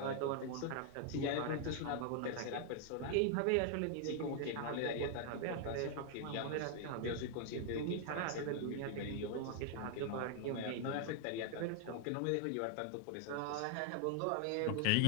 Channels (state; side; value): different; both; correlation 0.00